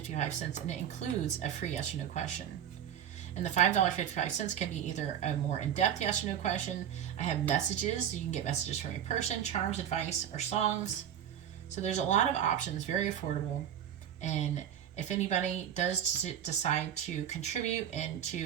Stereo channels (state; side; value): quieter; left; 9.7 dB